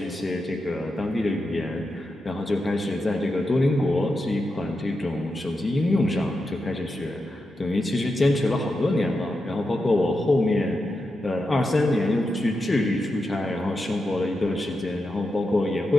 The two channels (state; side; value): normal; both; correlation 0.88